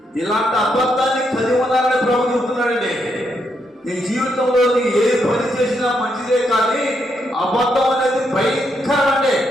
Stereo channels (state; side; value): normal; both; correlation 0.79